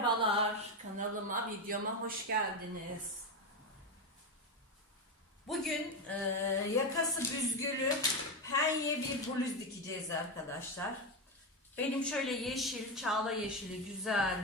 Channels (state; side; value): normal; both; correlation 0.12